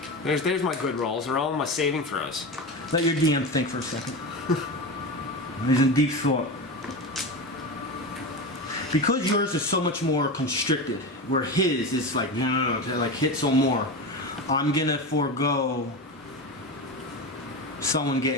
There's my good rolls. They're all my saving throws. Let your DM think for a second. He's in deep thought. Because yours is so much more constricted, where his is like, no, like hit some more. I'm gonna forego someone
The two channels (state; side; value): normal; both; correlation 0.22